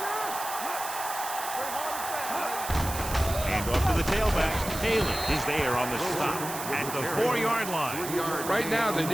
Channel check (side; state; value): right; noise; hiss, 8 dB below the sound